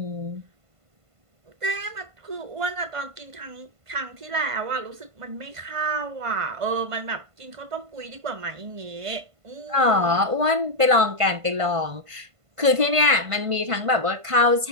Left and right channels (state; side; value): late; left; 1.5 ms